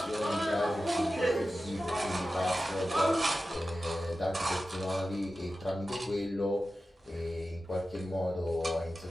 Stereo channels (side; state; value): both; normal; correlation 0.94